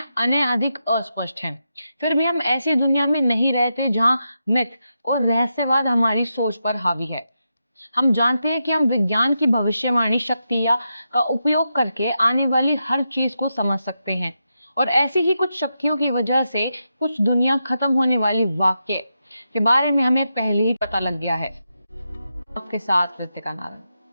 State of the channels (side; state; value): both; inverted; correlation -0.86